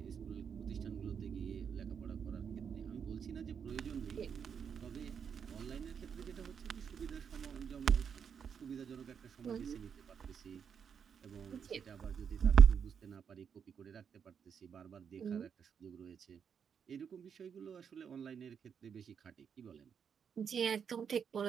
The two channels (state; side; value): quieter; left; 7.2 dB